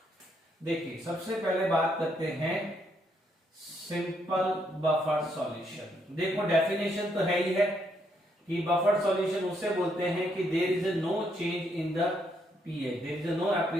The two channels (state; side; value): normal; both; correlation 0.74